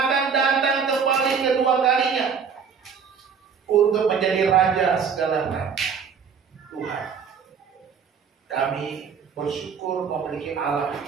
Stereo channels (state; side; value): quieter; left; 6.4 dB